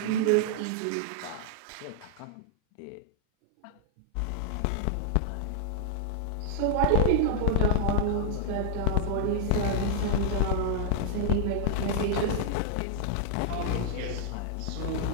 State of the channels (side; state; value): both; different; correlation -0.01